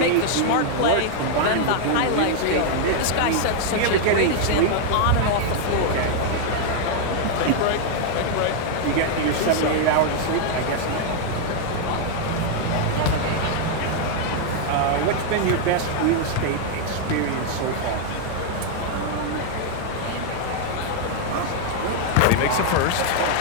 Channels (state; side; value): different; both; correlation 0.00